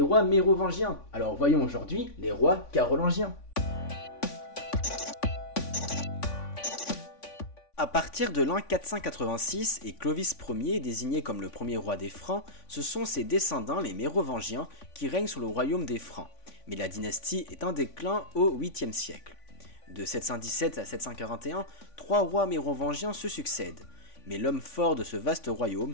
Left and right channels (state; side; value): late; right; 3.5 ms